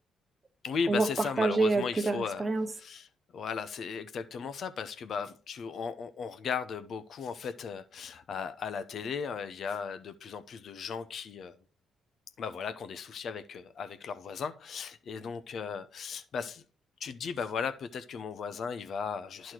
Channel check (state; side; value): normal; both; correlation 0.78